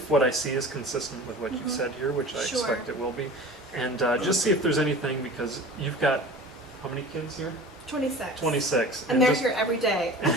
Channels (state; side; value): normal; both; correlation 0.39